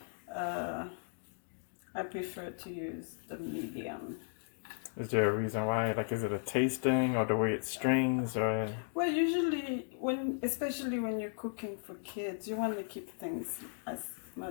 prefer to use the medium. Is there a reason why? Like, is it a tasting or the way it strings or? Well, usually especially when you're cooking for kids, you want to keep things as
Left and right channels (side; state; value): right; silent; digital silence